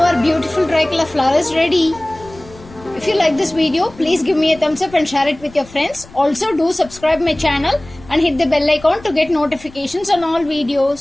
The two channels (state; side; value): noise; left; rumble, 21 dB below the sound